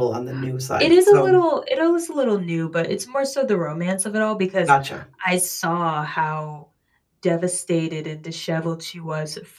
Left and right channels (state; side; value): identical; both; correlation 1.00